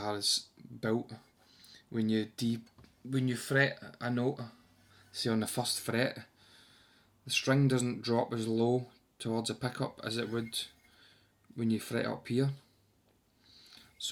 is built, when you fret a note, say on the first fret, the string doesn't drop as low towards the pickup as it would when you fret up here.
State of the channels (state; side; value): identical; both; correlation 1.00